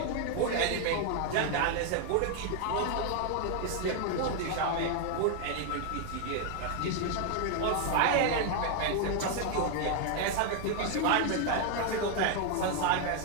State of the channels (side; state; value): both; different; correlation 0.00